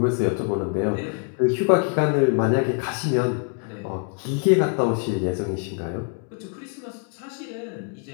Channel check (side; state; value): right; quieter; 38.3 dB